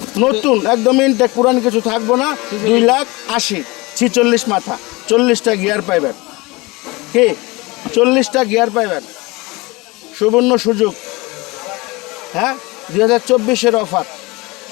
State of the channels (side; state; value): right; quieter; 23.8 dB